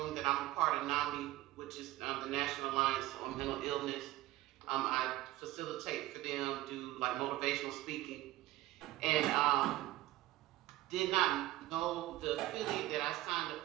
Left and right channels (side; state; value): left; quieter; 16.5 dB